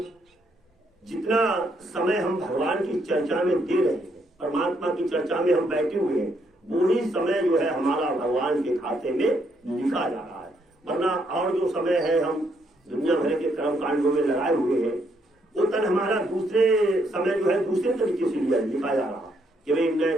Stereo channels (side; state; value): both; normal; correlation 0.74